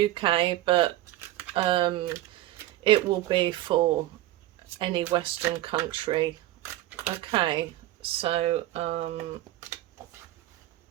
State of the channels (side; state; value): left; quieter; 15.3 dB